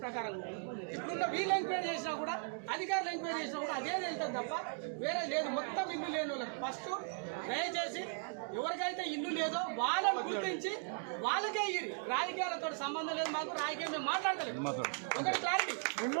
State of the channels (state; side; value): silent; left; 53 dB below the other